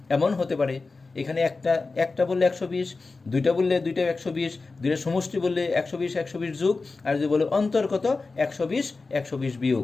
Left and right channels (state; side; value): quieter; right; 3.9 dB